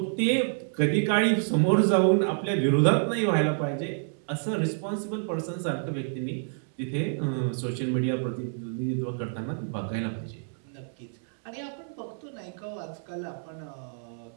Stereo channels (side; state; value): left; silent; digital silence